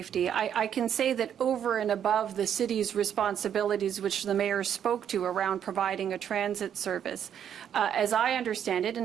I can say that over and above the city's responsibilities, which the mayor spoke to around providing a transit service, as I understand it,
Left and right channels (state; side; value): quieter; left; 9.1 dB